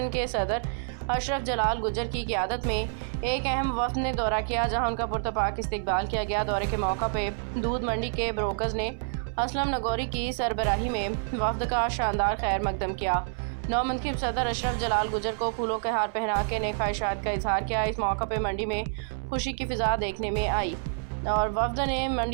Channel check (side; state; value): left; silent; 57 dB below the other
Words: के सदर अशरफ जलाल गुजर की क़ियादत में एक अहम वफ्द ने दौरा किया, जहां उनका पुरतपाक इस्तकबाल किया गया। दौरे के मौका पे दूध मंडी के ब्रोकर्स ने असलम नगौरी की सरबराही में वफ्द का शानदार खैर मकदम किया। नौमंतखब सदर अशरफ जलाल गुजर को फूलों के हार पहना के नेक ख्वाहिशात का इजहार किया। इस मौका पर मंडी में खुशी की फिजा देखने में आई और वफ्द ने